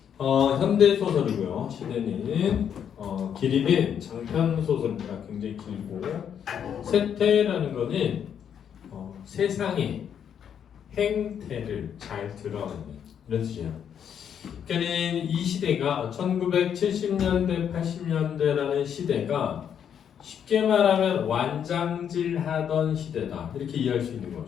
현대 소설이고요. 시대는 길이는 장편 소설입니다. 굉장히 길고 세태라는 거는 세상의 행태를 잘 드러내는 이런 뜻이에요. 그러니까 이 시대가 1970년대, 80년대라는 시대가 쉽게 말하면 완장질 하던 시대다. 이렇게 이해할 수 있는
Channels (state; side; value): quieter; right; 8.5 dB